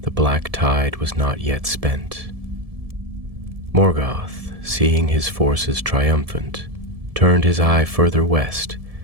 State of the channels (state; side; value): late; left; 1.7 ms